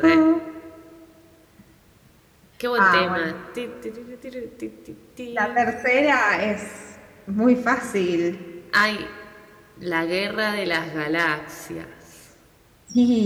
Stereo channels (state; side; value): identical; both; correlation 1.00